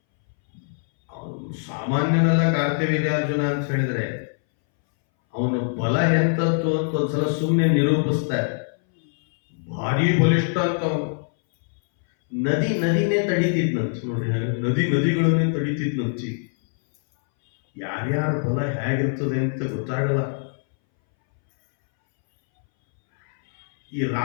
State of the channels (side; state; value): right; silent; 62 dB below the other